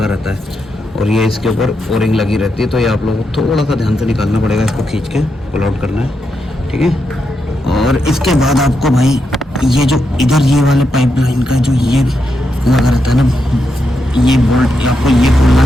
रहता है, और ये इसके ऊपर ओरिंग लगी रहती है। तो ये आप लोगों को थोड़ा सा ध्यान से निकालना पड़ेगा, इसको खींच के पुल आउट करना है, ठीक है। और इसके बाद आपको भाई ये जो इधर ये वाले पाइप लाइन का जो ये लगा रहता है ना, ये बोल्ट आपको ये खोलना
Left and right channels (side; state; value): both; normal; correlation 0.84